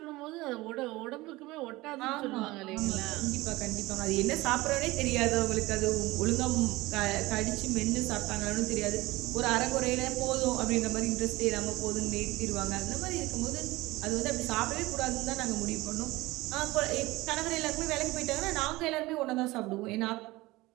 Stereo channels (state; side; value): quieter; left; 20.1 dB